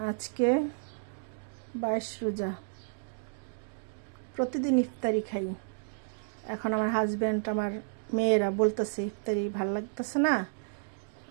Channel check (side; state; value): left; silent; digital silence